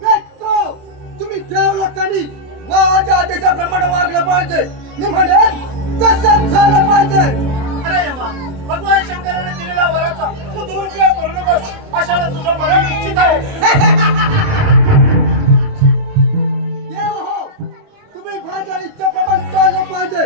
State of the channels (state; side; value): late; left; 29 ms